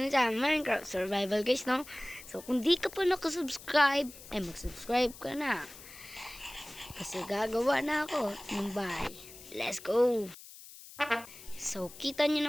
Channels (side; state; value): left; noise; hiss, 17 dB below the sound